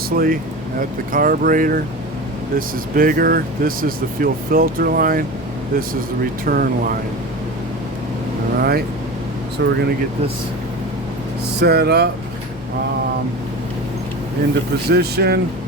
at the carburetor, this is bigger. This is the fuel filter line. This is the return line. Alright, so we're going to get this set up into position.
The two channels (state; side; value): normal; both; correlation 0.30